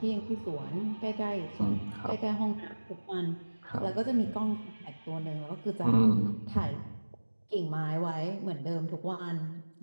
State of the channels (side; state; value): both; inverted; correlation -1.00